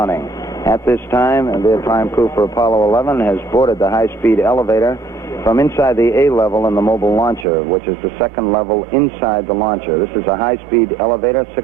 At this time, the prime crew for Apollo 11 has boarded the high-speed elevator from inside the A level in the mobile launcher, which is the second level inside the launcher. This is a high-speed elevator,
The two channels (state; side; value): drops out; left; at 7.5 s